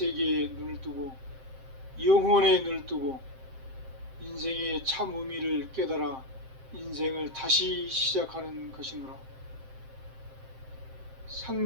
눈을 뜨고 영혼에 눈을 뜨고 인생의 참 의미를 깨달아 인생을 다시 시작하는 것이노라.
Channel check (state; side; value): late; left; 7.6 ms